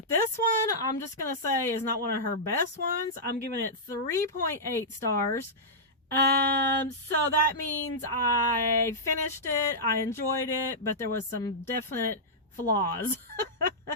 this one I'm just going to say is not one of her best ones. I'm giving it 3.8 stars. So that means I finished it, I enjoyed it, but there was some definite flaws.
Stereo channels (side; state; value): both; normal; correlation -0.12